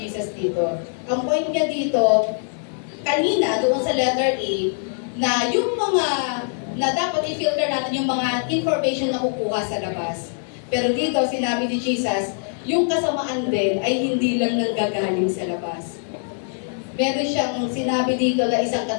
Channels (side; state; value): right; silent; 61 dB below the other